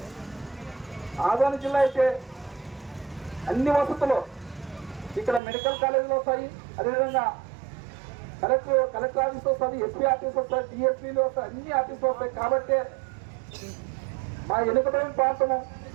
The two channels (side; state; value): left; drops out; at 5.4 s